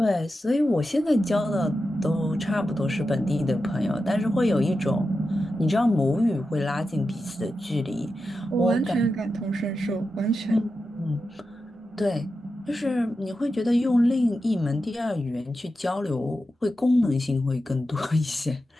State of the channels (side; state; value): both; normal; correlation 0.90